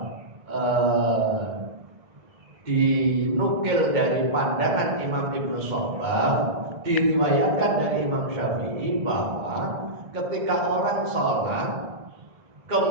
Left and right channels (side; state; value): left; late; 1.6 ms